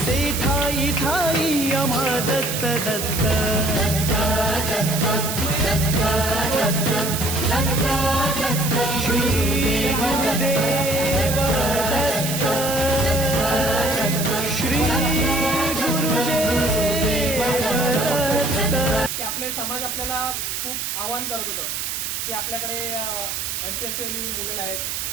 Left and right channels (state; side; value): noise; right; hiss, 3 dB below the sound